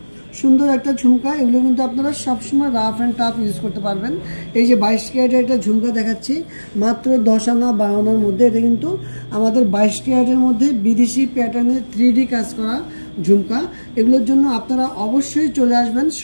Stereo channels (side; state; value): both; inverted; correlation -1.00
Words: সুন্দর একটা ঝুমকা, এগুলো কিন্তু আপনারা সবসময় রাফ অ্যান্ড টাফ ইউজ করতে পারবেন। এই যে 22 ক্যারেটের একটা ঝুমকা দেখাচ্ছি মাত্র 10 আনা 12 আনার মধ্যে। এটা কিন্তু আমাদের 22 ক্যারেটের মধ্যে বিদেশি প্যাটার্নে 3D কাজ করা ঝুমকা। এগুলোর জন্য আপনারা অবশ্যই চলে আসবেন